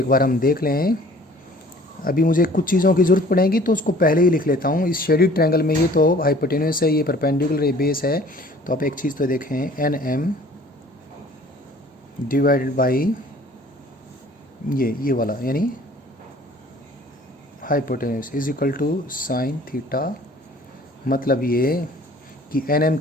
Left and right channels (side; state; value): both; normal; correlation 0.51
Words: बार हम देख लें। अभी मुझे कुछ चीज़ों की ज़रूरत पड़ेगी तो उसको पहले ही लिख लेता हूँ। इस शेडेड ट्रायंगल में ये तो हाइपोटेन्यूस है, ये परपेंडिकुलर, ये बेस है। तो आप एक चीज़ तो देखें, एन एम डिवाइडेड बाई ये वाला, यानी hypotenuse is equal to sine theta. मतलब ये कि एन एम